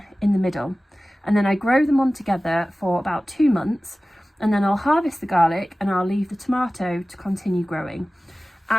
in the middle. And then I grow them on together for about 2 months, and then I'll harvest the garlic and I'll leave the tomato to continue growing.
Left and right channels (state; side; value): normal; both; correlation 0.97